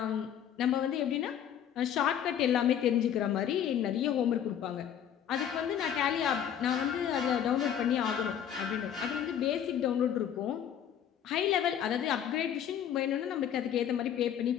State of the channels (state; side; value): quieter; right; 9.4 dB